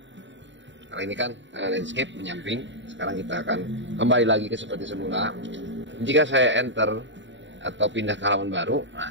Kalau ini kan landscape menyamping, sekarang kita akan kembali lagi ke seperti semula. Jika saya enter atau pindah ke halaman baru,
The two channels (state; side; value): late; left; 0.54 ms